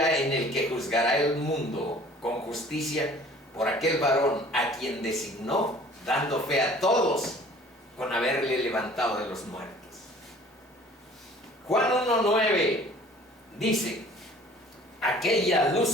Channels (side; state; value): both; normal; correlation 0.50